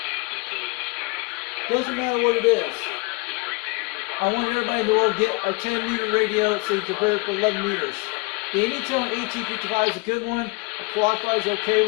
Doesn't matter what it is. I want everybody in the world to get a 10-meter radio so you can compare it for 11 meters. The Anytone AT55 is a good one. A Quad5 is an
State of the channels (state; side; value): quieter; right; 28.6 dB